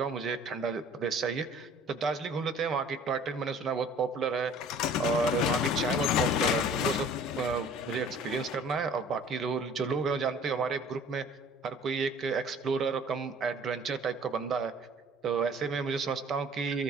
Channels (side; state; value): both; normal; correlation 0.50